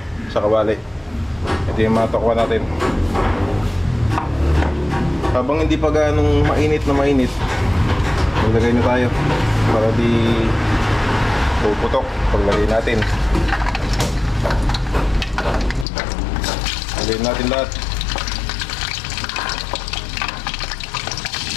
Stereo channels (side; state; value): right; drops out; at 15.9 s